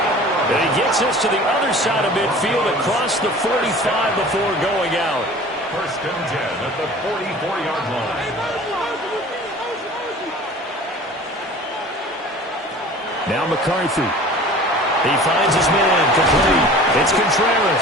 And he gets us to the other side of midfield across the 45 before going out. 1st and 10 at the 44-yard line. Now McCarthy. He finds his man, complete. It's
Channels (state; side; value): normal; both; correlation 0.43